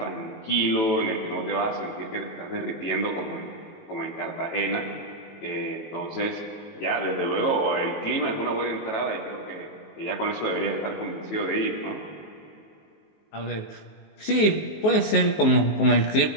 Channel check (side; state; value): right; late; 19 ms